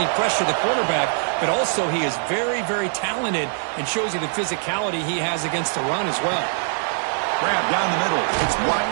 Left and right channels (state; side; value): silent; left; 57 dB below the other